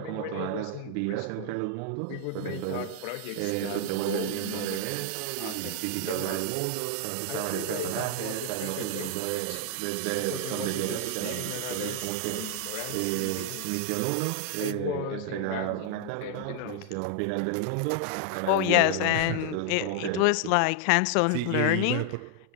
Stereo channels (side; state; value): both; different; correlation 0.00